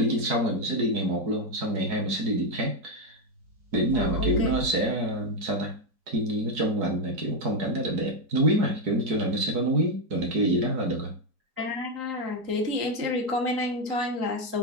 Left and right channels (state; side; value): late; left; 4.7 ms